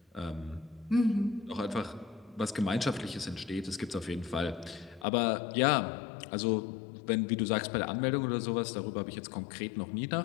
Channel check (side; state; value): right; drops out; at 5.1 s